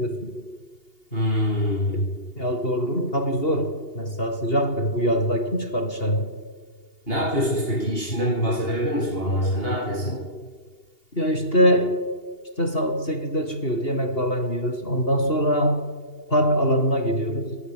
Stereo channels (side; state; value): right; late; 2.8 ms